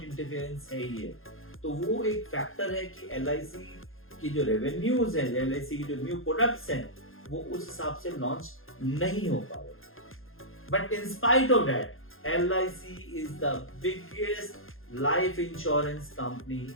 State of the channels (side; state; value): right; late; 0.60 ms